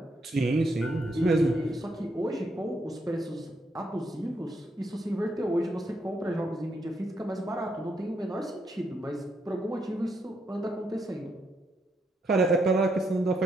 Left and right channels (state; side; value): normal; both; correlation 0.78